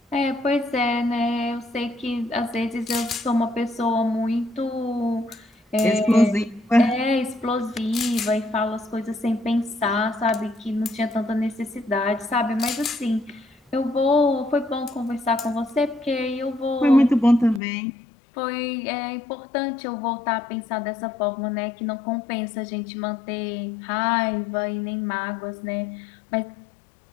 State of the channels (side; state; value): right; drops out; at 17.6 s